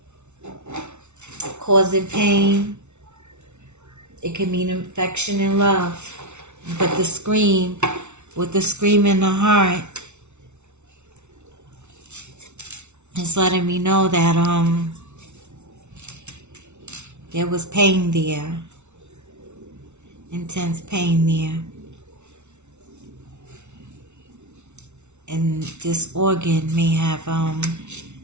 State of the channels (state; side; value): late; left; 0.82 ms